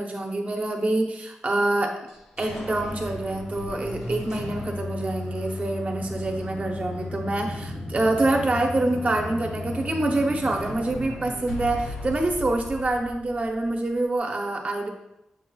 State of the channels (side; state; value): both; normal; correlation 0.91